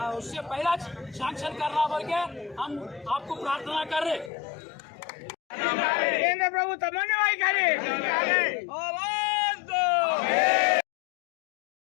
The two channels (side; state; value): right; drops out; at 4.3 s